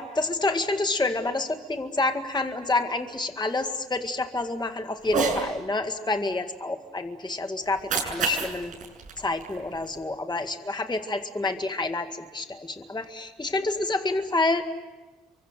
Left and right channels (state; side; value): normal; both; correlation 0.51